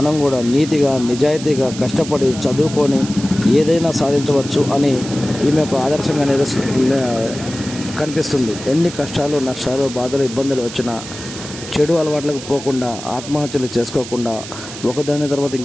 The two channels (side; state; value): right; noise; hiss, 12 dB below the sound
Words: కూడా నీతిగా నిజాయితీగా కష్టపడి చదువుకొని ఏదైనా సాధించవచ్చు అని ఈమె ఒక ఆదర్శంగా కనిపిస్తుంది. ఎన్ని కష్టాలు నష్టాలు బాధలు ఇబ్బందులు వచ్చినా చెడు అలవాట్లకు పోకుండా, ఆత్మహత్యలు చేసుకోకుండా, ఒకదాని తర్వాత